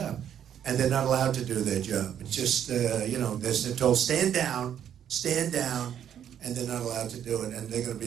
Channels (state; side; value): quieter; left; 9.6 dB